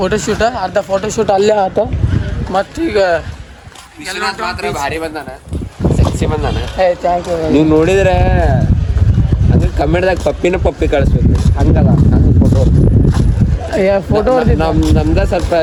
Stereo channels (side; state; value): both; identical; correlation 1.00